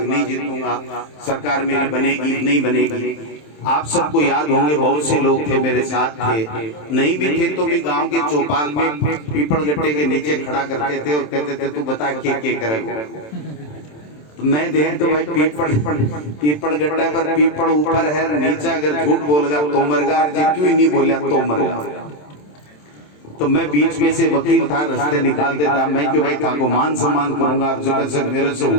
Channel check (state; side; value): late; right; 27 ms